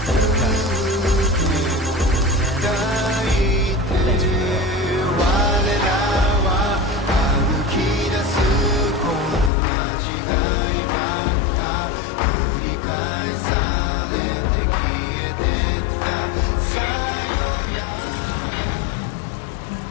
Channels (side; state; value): right; drops out; at 9.5 s